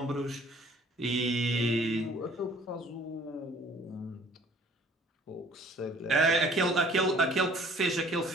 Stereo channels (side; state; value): both; normal; correlation 0.54